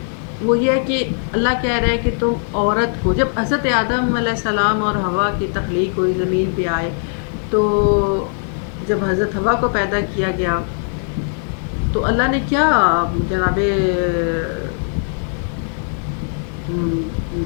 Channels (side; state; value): right; silent; 60 dB below the other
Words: وہ یہ ہے کہ اللہ کہہ رہا ہے کہ تم عورت کو، جب حضرت آدم علیہ السلام اور حوا کی تخلیق ہوئی، زمین پہ آئے، تو جب حضرت حوا کو پیدا کیا گیا تو اللہ نے کیا